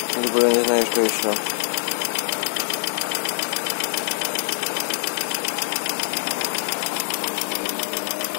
либо я не знаю, что еще.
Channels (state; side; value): silent; right; digital silence